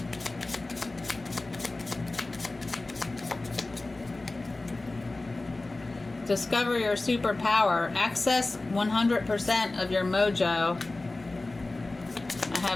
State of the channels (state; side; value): quieter; right; 3.1 dB